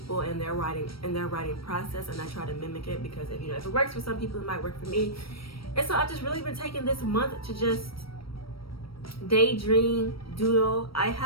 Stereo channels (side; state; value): right; late; 0.75 ms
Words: and their writing process, and I try to mimic it because if it works for some people, it might work for me. And so I've just really been taking this month to just daydream, doodle. I